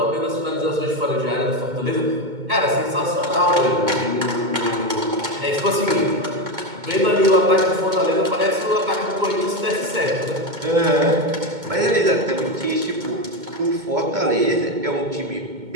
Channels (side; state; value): left; late; 2.2 ms